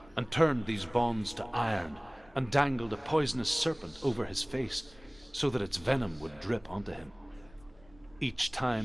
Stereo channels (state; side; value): noise; left; rumble, 26 dB below the sound